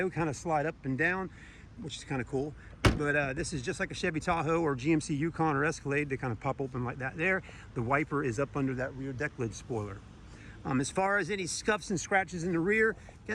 kind of slide up and down, which is kind of cool. But this is just like a Chevy Tahoe or GMC Yukon or Escalade. They kind of pop open like that there. The wiper is up under that rear deck lid spoiler. As far as any scuffs and scratches in the rear,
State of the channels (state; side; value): identical; both; correlation 1.00